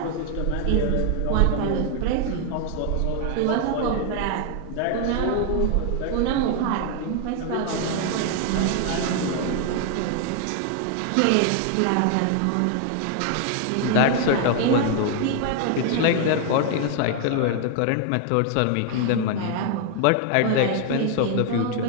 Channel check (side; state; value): both; different; correlation 0.00